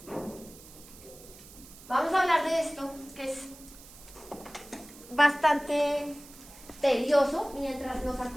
Vamos a hablar de esto, que es bastante tedioso mientras nos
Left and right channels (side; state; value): right; noise; hiss, 19 dB below the sound